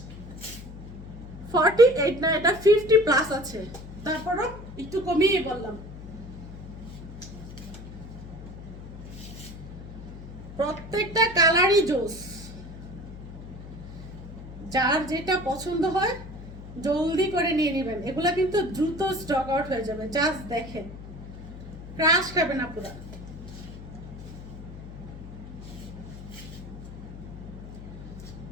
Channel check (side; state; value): left; noise; hum, 13 dB below the sound